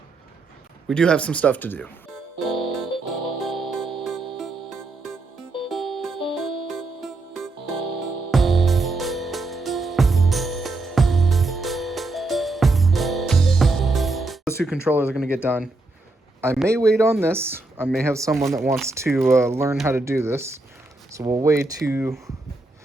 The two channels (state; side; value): quieter; left; 3.1 dB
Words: We do have some stuff to do. Those two controllers are going to get done. I may wait on this. I may have someone that wants to learn how to do this. So we'll wait to